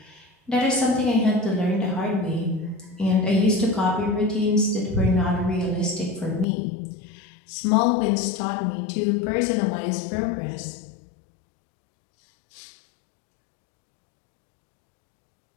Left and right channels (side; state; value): right; drops out; at 6.5 s